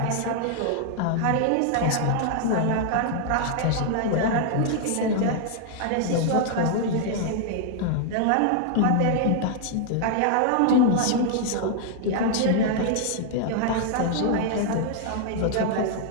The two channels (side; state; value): both; different; correlation 0.00